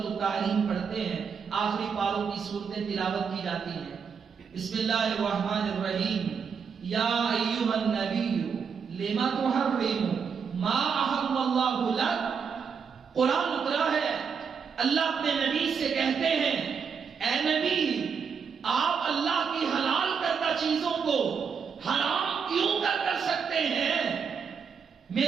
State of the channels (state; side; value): quieter; left; 6.3 dB